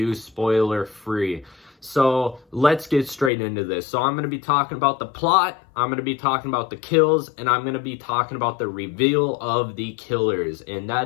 spoiler-free. So let's get straight into this. So I'm going to be talking about the plot, I'm going to be talking about the kills, and I'm going to be talking about the reveal of the killers. And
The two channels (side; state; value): right; drops out; at 3.3 s